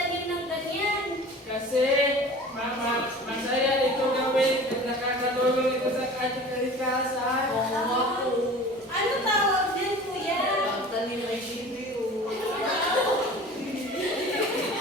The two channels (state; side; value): normal; both; correlation 0.41